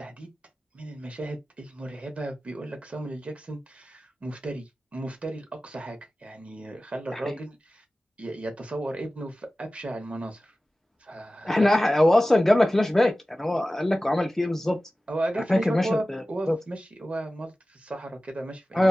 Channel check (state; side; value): normal; both; correlation 0.96